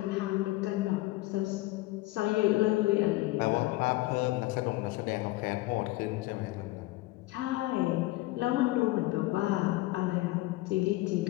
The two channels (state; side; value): quieter; right; 19.3 dB